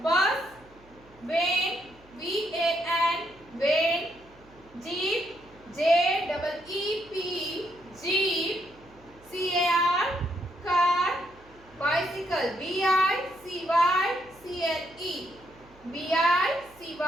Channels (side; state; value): right; noise; hum, 27 dB below the sound